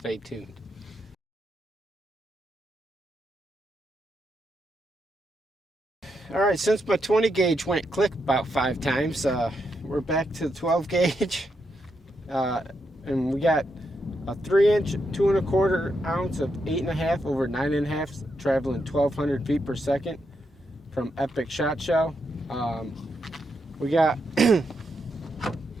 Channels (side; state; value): both; normal; correlation 0.82